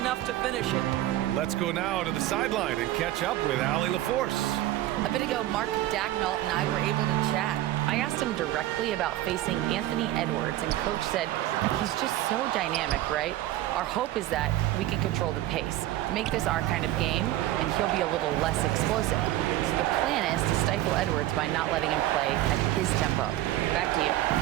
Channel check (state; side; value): quieter; left; 14.8 dB